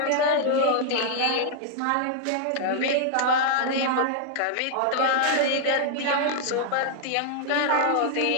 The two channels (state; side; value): different; both; correlation -0.01